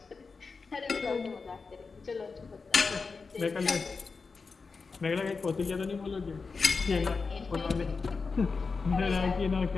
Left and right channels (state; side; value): quieter; right; 4.6 dB